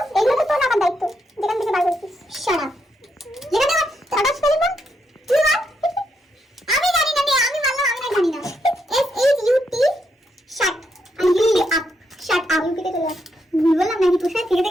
এগুলো তো তোর আমার দায়িত্ব, যেখান থেকে বার করেছিস। Shut up. যেখানে আমার ছাড়াস ফেলি না, তুই মার। আমি জানি না, আমি মানলাম, আমি না জানি না। SHUT shut up, shut up. ইউপিতে চলে যাস। ভুল বললাম নাকি? তোর সাথে থেকে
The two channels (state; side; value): normal; both; correlation 0.79